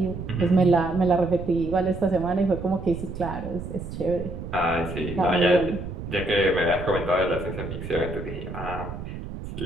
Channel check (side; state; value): right; noise; rumble, 9 dB below the sound